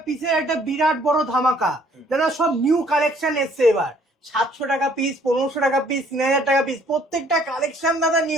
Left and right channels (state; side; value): normal; both; correlation 0.61